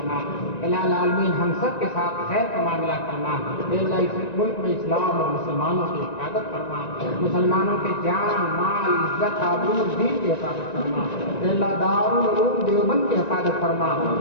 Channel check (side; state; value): right; late; 1.9 ms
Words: الہ العالمین ہم سب کے ساتھ خیر کا معاملہ فرما، اے اللہ اس ملک میں اسلام اور مسلمانوں کی حفاظت فرما، مسلمانوں کے جان مال عزت آبرو دین کی حفاظت فرما، اے اللہ دارالعلوم دیوبند کی حفاظت فرما،